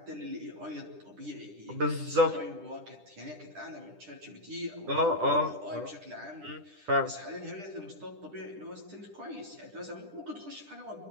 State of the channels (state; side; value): late; left; 10 ms